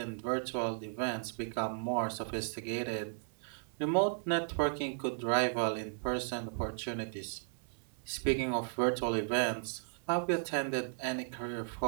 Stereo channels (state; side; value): silent; left; 54 dB below the other